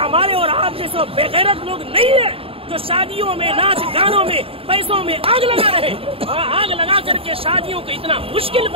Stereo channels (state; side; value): late; left; 0.27 ms